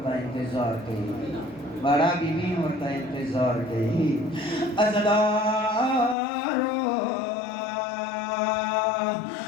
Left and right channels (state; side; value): drops out; right; at 6.2 s